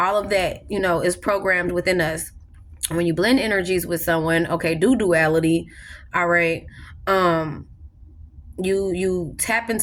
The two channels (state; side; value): identical; both; correlation 1.00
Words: of that, is programmed within us. When you blend energies with someone, okay, do duality, all right, you tap